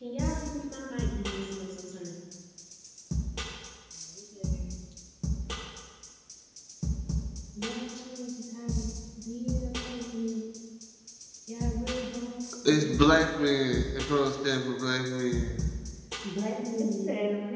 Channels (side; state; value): both; identical; correlation 1.00